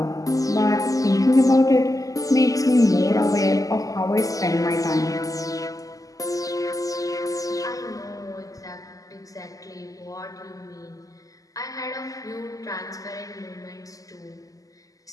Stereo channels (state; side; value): late; right; 0.17 ms